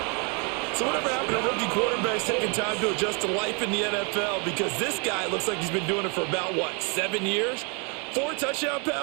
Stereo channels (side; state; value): left; quieter; 34.4 dB